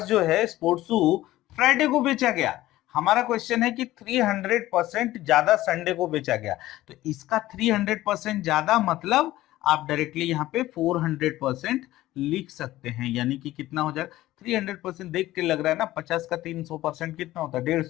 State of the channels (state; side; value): quieter; right; 15.9 dB